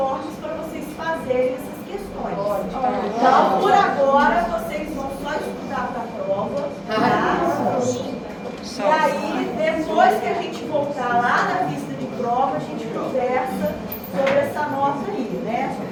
para vocês fazerem essas questões. Então, por agora, vocês vão só estudar para a prova, tá? E aí, depois que a gente voltar lá na vista de prova, a gente conversa sobre essa nota aí, né?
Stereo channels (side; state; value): both; identical; correlation 1.00